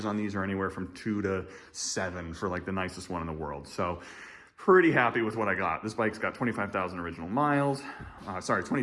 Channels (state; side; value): identical; both; correlation 1.00